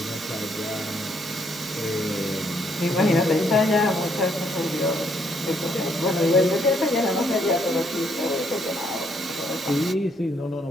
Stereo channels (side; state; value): both; normal; correlation 0.71